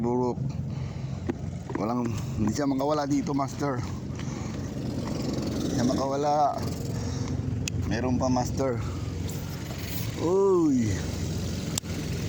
Hindi siya makawala dito master. Hindi siya makawala. Meron pa master. Uy,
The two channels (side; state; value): both; identical; correlation 1.00